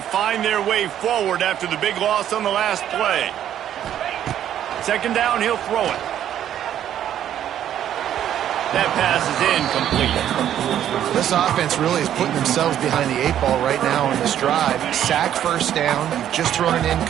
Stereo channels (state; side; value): quieter; left; 10.7 dB